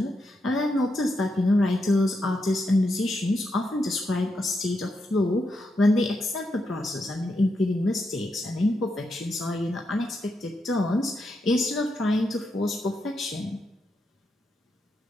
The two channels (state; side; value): normal; both; correlation 0.83